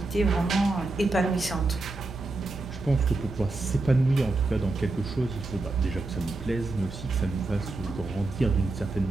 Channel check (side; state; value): left; quieter; 3.2 dB